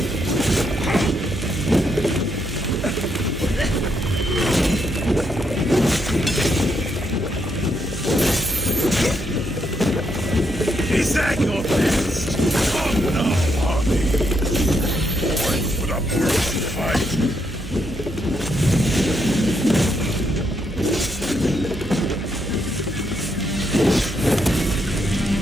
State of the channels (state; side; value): noise; right; hum, 10 dB below the sound